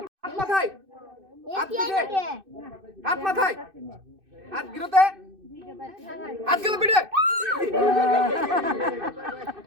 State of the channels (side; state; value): left; late; 2.6 ms